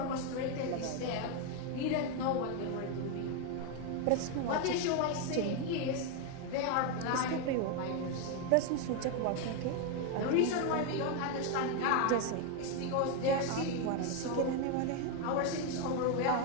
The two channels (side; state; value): both; different; correlation 0.01